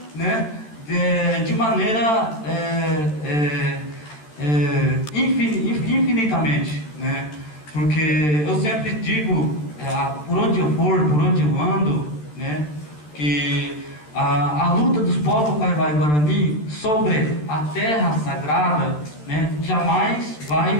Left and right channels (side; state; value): right; late; 13 ms